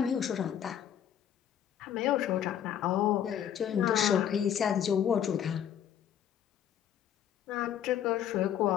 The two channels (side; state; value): right; quieter; 9.7 dB